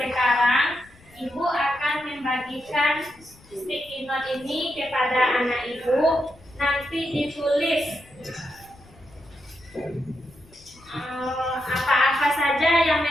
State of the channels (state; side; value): noise; left; rumble, 26 dB below the sound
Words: ibu akan membagikan sticky note ini kepada anak ibu. Nanti ditulis apa-apa saja yang